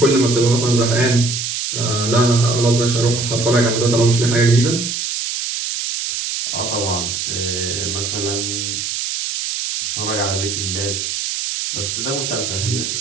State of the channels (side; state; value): right; noise; hiss, 3 dB below the sound